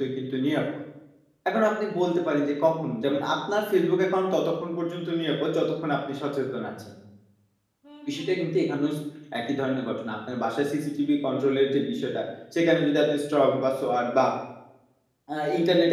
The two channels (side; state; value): both; identical; correlation 1.00